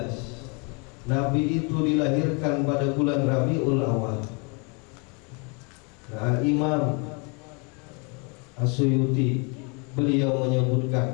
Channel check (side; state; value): right; quieter; 33.2 dB